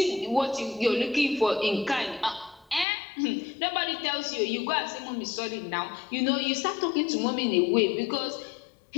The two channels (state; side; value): drops out; right; at 2.9 s